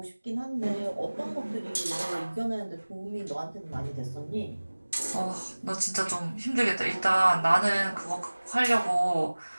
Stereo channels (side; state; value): both; inverted; correlation -1.00